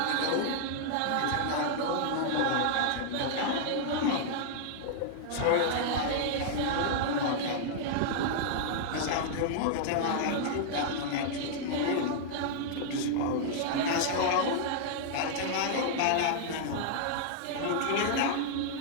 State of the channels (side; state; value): both; different; correlation -0.01